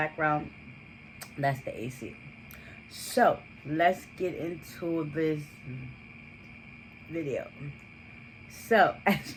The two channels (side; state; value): both; identical; correlation 1.00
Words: That's the AC. So, let's get into this video. So, as